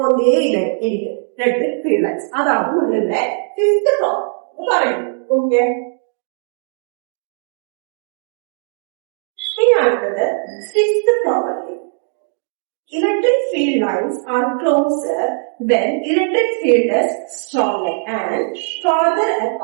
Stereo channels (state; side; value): silent; left; 62 dB below the other